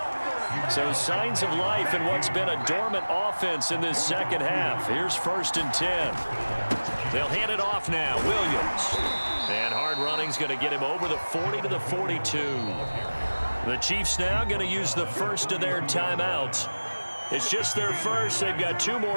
So signs of life in what's been a dormant offense in this second half. Here's 1st and 10. They'll hand it off now. Williams. And hard running's going to get him over the 40 to the 42. The Chiefs now going to use the first of their timeouts. It's just their first. They've got 2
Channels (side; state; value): both; inverted; correlation -1.00